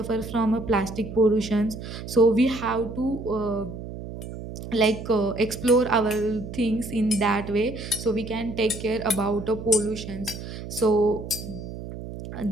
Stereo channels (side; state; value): right; noise; hum, 10 dB below the sound